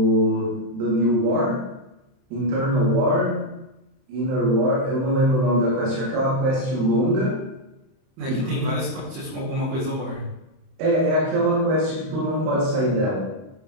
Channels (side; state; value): left; late; 31 ms